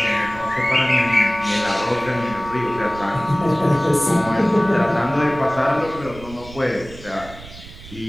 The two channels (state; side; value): noise; right; rumble, 17 dB below the sound